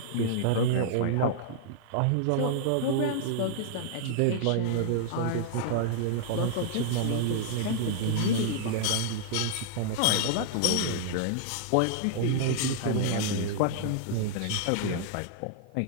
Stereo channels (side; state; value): both; different; correlation -0.01